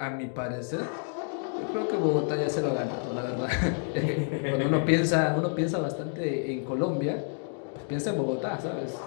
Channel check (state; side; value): silent; right; 59 dB below the other